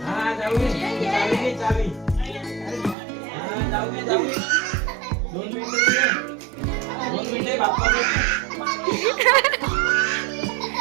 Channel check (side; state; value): left; drops out; at 3.0 s